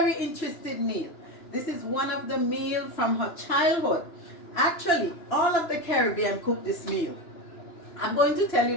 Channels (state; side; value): late; right; 2.9 ms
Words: interesting meal. This is one of the meals from her childhood. Actually, all of the Caribbean cook this meal. I'm going to tell you